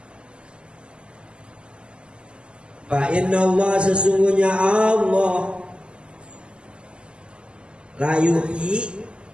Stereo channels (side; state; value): left; late; 0.050 ms